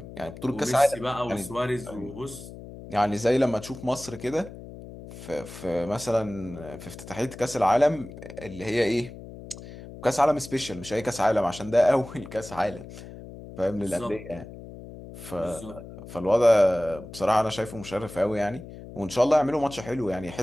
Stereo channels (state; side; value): noise; left; hum, 14 dB below the sound